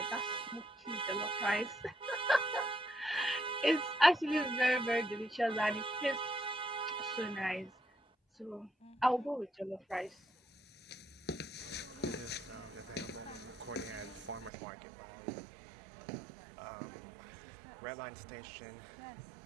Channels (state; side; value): drops out; left; at 14.5 s